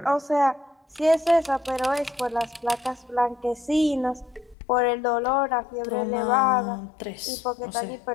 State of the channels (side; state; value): right; drops out; at 4.5 s